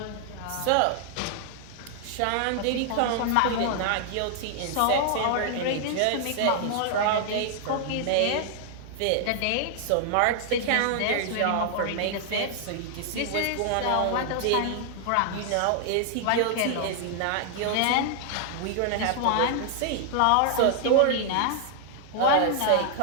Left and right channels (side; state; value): both; different; correlation 0.00